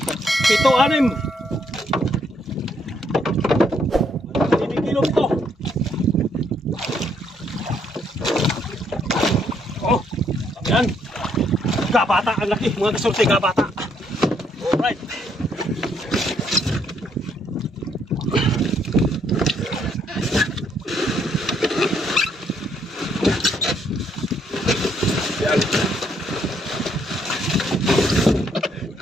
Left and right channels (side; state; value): both; normal; correlation 0.71